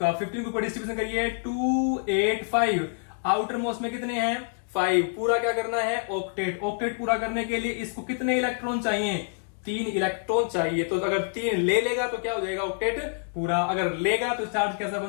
15 ग्रुप का डिस्ट्रीब्यूशन करिए 2 8 5, आउटर मोस्ट में कितने हैं 5, पूरा क्या करना है ऑक्टेट। ऑक्टेट पूरा करने के लिए इसको कितने इलेक्ट्रॉन चाहिए, 3 इलेक्ट्रॉन चाहिए। तो अगर 3 ले लेगा तो क्या हो जाएगा ऑक्टेट पूरा, अगर लेगा तो चार्ज कैसा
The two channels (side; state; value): right; silent; 60 dB below the other